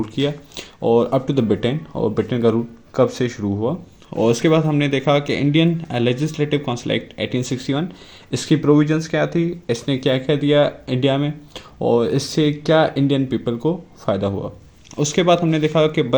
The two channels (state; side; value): identical; both; correlation 1.00